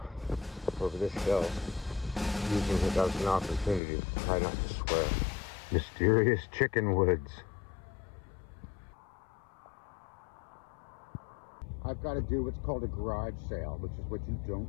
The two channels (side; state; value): right; drops out; at 3.8 s